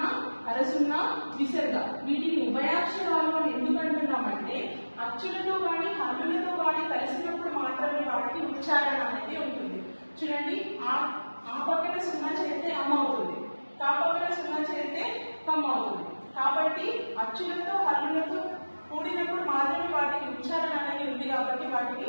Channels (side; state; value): both; inverted; correlation -1.00